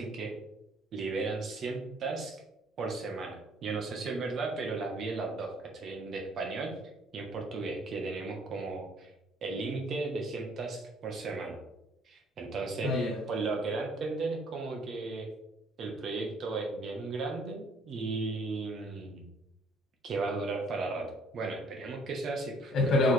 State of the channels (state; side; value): normal; both; correlation 0.60